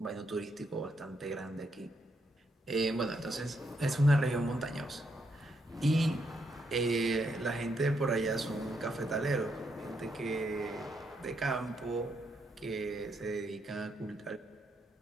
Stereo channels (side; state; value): both; normal; correlation 0.78